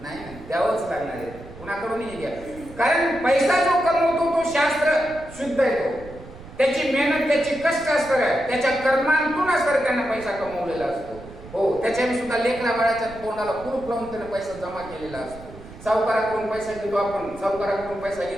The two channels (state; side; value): noise; right; rumble, 17 dB below the sound